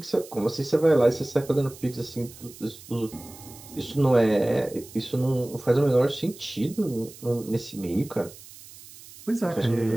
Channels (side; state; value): right; noise; hiss, 19 dB below the sound